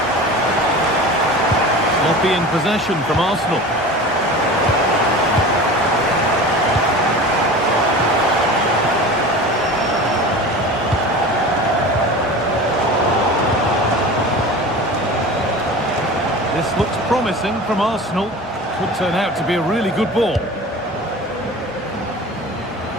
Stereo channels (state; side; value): normal; both; correlation 0.35